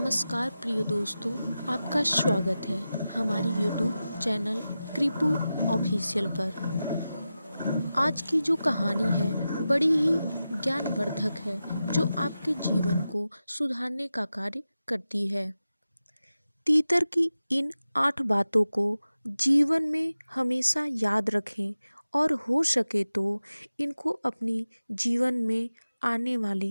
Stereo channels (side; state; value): both; inverted; correlation -0.93